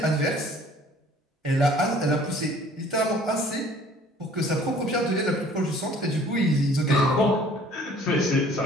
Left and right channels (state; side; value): normal; both; correlation 0.53